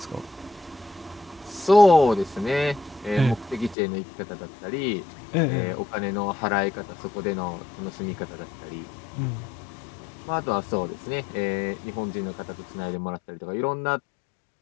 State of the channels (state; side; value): drops out; right; at 3.8 s